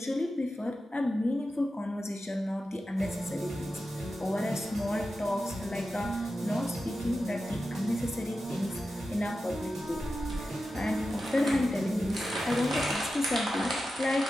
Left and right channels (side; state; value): both; normal; correlation 0.92